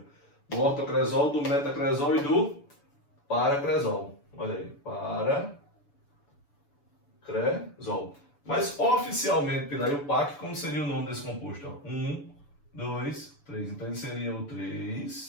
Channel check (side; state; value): right; late; 6.9 ms